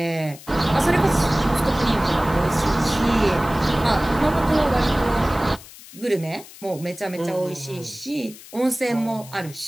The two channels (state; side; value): noise; left; hiss, 18 dB below the sound